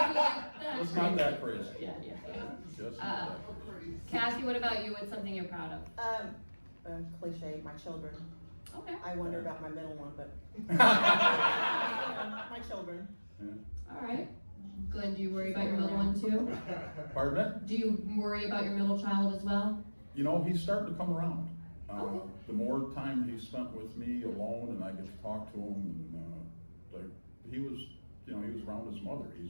if you like that. It's not that crazy. Yeah. Just not that crazy. Kathy, what about you? What's something you're proud of? Cliche, my children. Okay. I wonder about my middle one, but my children. Yeah. All right. Glenn, do you worry about your middle one too? Pardon me? Do you worry about your middle child as well? He's starting to come around. Okay. The more time he spent with me alone, and I get to talk to him, and he was around his mother.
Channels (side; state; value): both; inverted; correlation -1.00